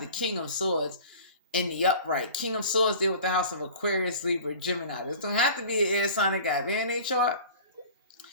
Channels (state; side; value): inverted; both; correlation -0.42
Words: King of Swords in the upright. King of Swords deal with the house of Aquarius, Libra, Gemini. This don't have to be an air sign that got in their chart.